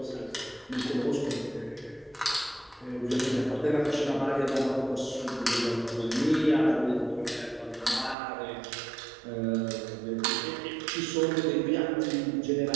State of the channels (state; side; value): drops out; left; at 8.2 s